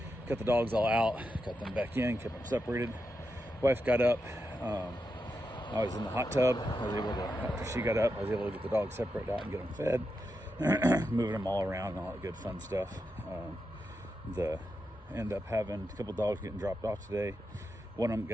Got the dogs all out, got them back in, kept them separated. Wife got up. I was in the hot tub. I was able to, after she got up, I was able to get the dogs separated out and get them fed, moving them all around and all that good fun stuff. End up having a couple dogs getting dropped off today. One of them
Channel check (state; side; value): normal; both; correlation 0.87